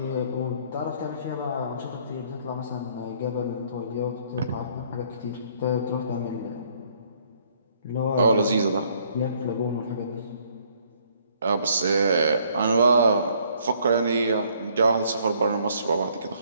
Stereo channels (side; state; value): both; inverted; correlation -0.64